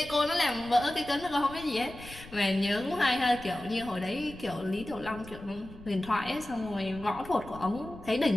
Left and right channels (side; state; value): left; noise; rumble, 17 dB below the sound